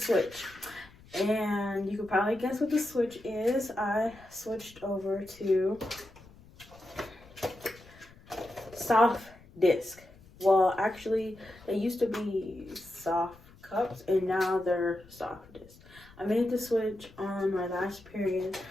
and you could probably guess what the switch is. I switched over to soft disc. Well, actually, they used to be soft cups, and now they're soft disc. I made the switch on my last period.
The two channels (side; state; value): left; noise; rumble, 24 dB below the sound